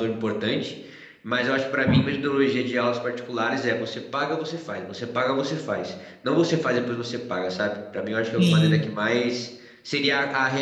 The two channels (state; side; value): identical; both; correlation 1.00